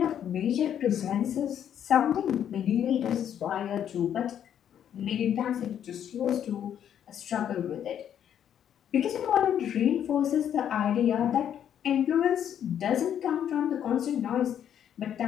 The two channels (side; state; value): right; quieter; 9.5 dB